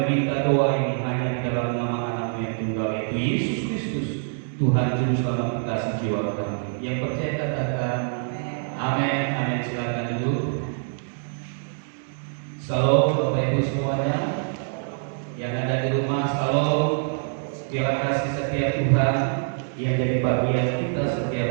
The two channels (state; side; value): silent; left; 62 dB below the other